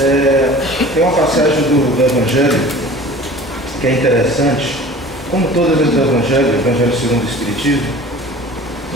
Tem uma passagem do Evangelho que é interessante, como todas as do Evangelho, o Evangelho segundo o Espiritismo,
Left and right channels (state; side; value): normal; both; correlation 0.42